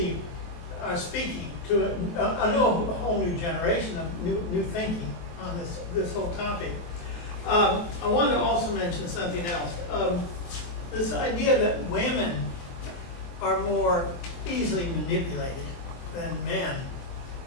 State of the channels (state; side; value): late; right; 23 ms